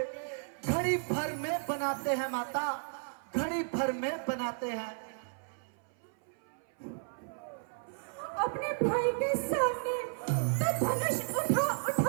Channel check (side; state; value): left; silent; 55 dB below the other